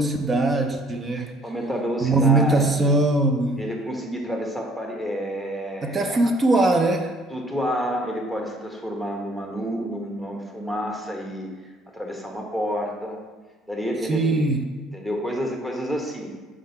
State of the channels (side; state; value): both; normal; correlation 0.60